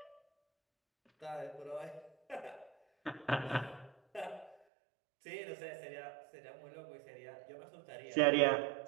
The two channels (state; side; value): drops out; left; at 4.5 s